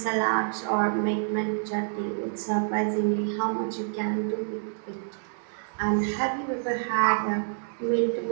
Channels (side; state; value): left; silent; digital silence